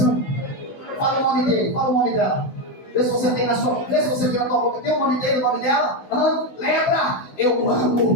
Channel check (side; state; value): right; late; 16 ms